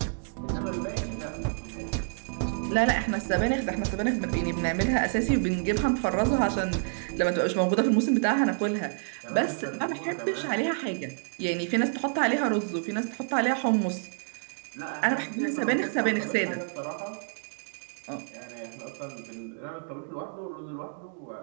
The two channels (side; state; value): left; silent; digital silence